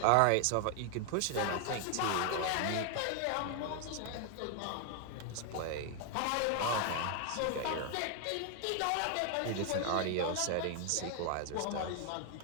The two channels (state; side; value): different; both; correlation 0.00